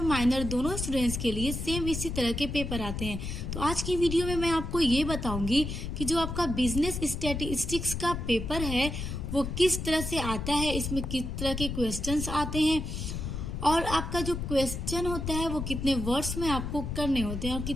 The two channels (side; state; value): left; noise; rumble, 5 dB below the sound